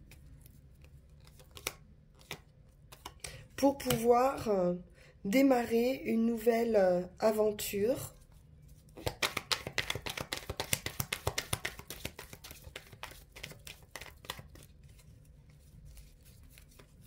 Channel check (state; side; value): identical; both; correlation 1.00